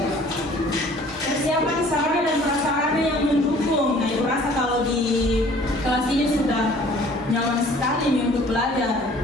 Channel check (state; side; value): normal; both; correlation 0.53